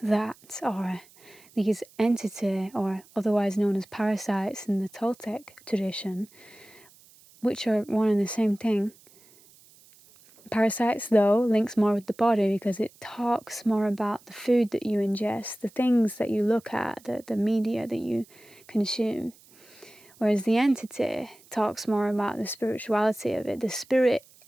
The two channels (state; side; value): noise; right; hiss, 27 dB below the sound